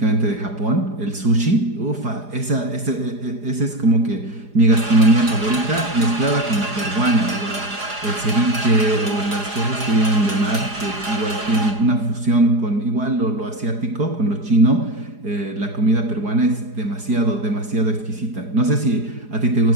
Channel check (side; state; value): left; late; 4.8 ms